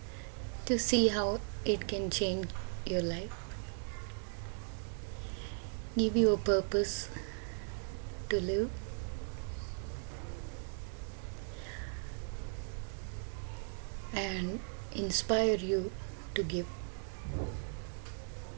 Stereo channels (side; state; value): left; silent; 53 dB below the other